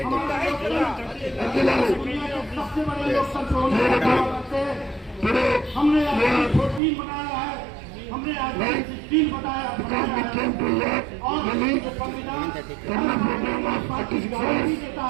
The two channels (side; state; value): left; drops out; at 6.8 s